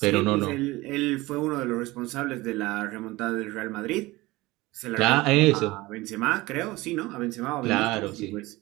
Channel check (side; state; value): left; quieter; 20.3 dB